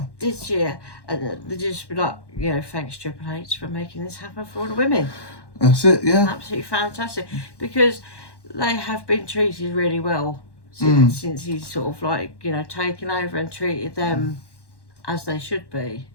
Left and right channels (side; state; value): right; late; 1.1 ms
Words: This year. And they just be like, thanks Triple H for making this happen for all the women. That's it, yeah. Absolutely fantastic. Because they have been treated really well since he's sort of taken over and treated them as they should be.